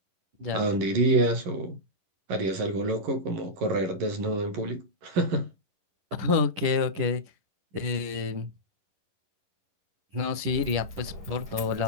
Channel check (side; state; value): left; late; 11 ms